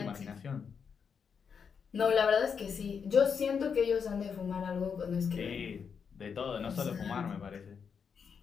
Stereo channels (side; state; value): right; quieter; 6.5 dB